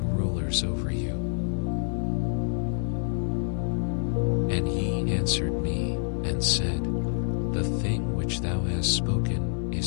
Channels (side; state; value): right; silent; 60 dB below the other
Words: rulers over you. And he answered me, and said, The thing which thou hast spoken